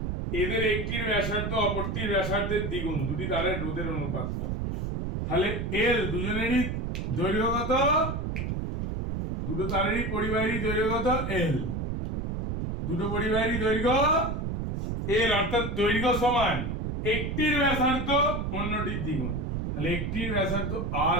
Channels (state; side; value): noise; right; rumble, 2 dB below the sound